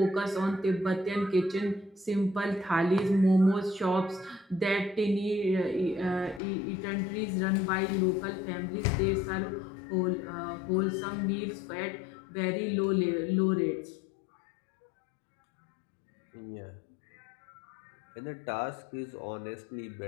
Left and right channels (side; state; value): right; drops out; at 6.4 s